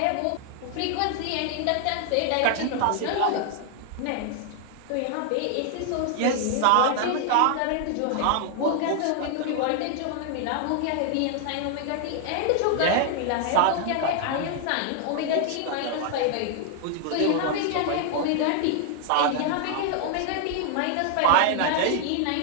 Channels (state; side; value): different; both; correlation 0.00